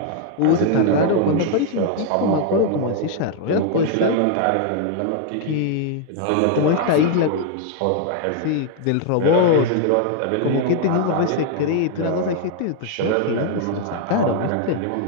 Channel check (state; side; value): different; both; correlation 0.00